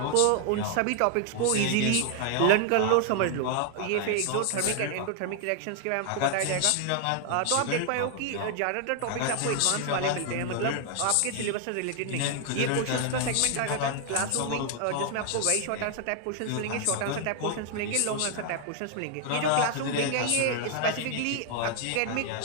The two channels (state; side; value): different; both; correlation 0.00